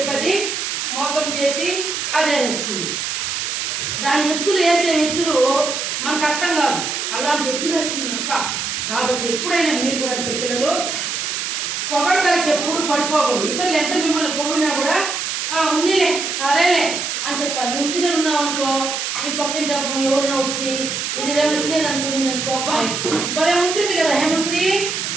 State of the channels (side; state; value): right; noise; hiss, 2 dB below the sound